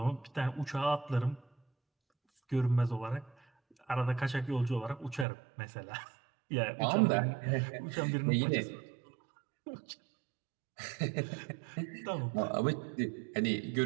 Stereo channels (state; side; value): drops out; left; at 5.2 s